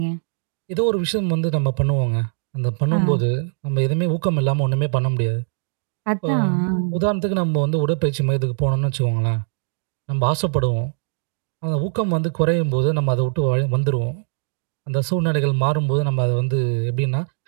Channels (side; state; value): left; silent; digital silence